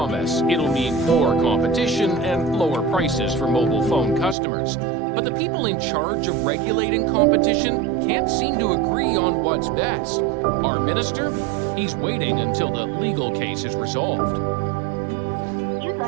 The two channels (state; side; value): drops out; left; at 4.4 s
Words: it'll mean more competition and lower prices for mobile phone customers. But the people in charge of regulating competition can't seem to agree on what's best. Our minister? He's waiting until the legal case is resolved. You'd